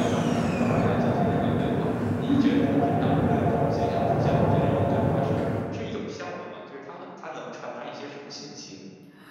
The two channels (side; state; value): both; identical; correlation 1.00